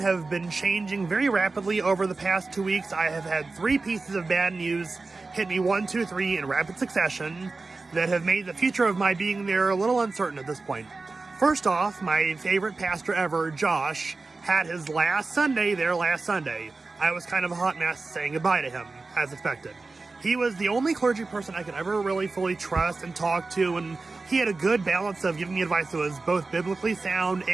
have been changing very rapidly over the past 2 weeks. I have had 3 pieces of bad news hit me 1, 2, 3 in rapid succession that have made the future of my being there a little uncertain at this point. First off, my favorite pastor ever, Josh, had his last Sunday there last Sunday. I was kind of a hot mess saying goodbye to him, as expected. He was the only clergy person I could ever really fully trust and talk to, and he had a good balance of giving me advice that was both biblically sound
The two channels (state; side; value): quieter; left; 3.7 dB